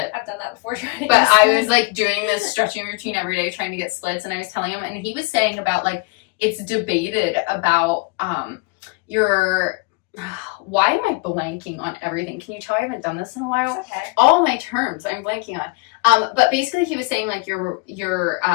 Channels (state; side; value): quieter; right; 27.1 dB